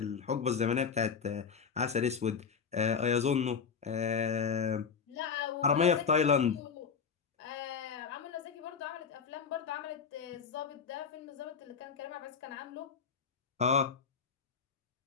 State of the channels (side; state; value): right; quieter; 6.2 dB